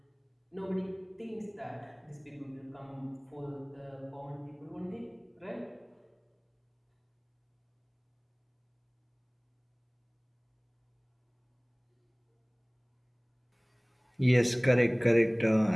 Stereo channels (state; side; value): identical; both; correlation 1.00